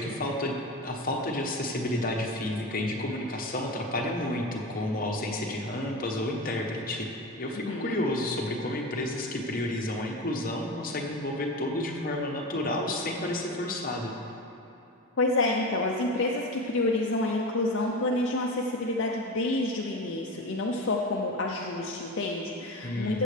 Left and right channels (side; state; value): both; normal; correlation 0.26